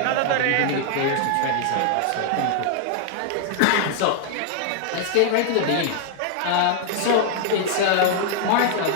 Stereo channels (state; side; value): different; both; correlation -0.01